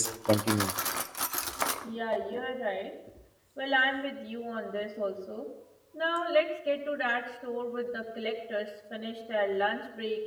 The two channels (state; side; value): identical; both; correlation 1.00